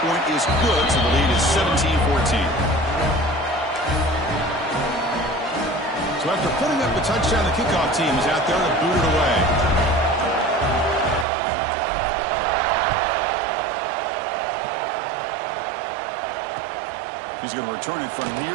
point is good, so the lead is 17-14. So after putting up the touchdown, the kickoff team is out there to boot it away. He's going to return it from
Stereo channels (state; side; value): drops out; left; at 11.2 s